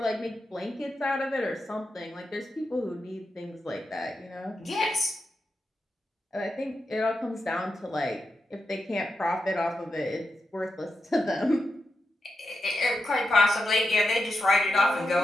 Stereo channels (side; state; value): both; normal; correlation 0.88